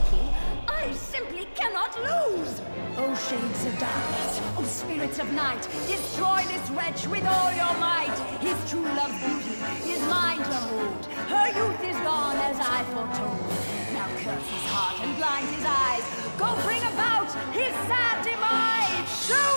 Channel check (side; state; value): both; inverted; correlation -1.00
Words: I simply cannot lose! Oh, shades of darkness, oh, spirits of night, destroy this wretch with all your might! His true love's beauty is mine to hold. Her youth is gone as I foretold. Now curse his heart and blind his eyes. Go bring about his sad demise! Show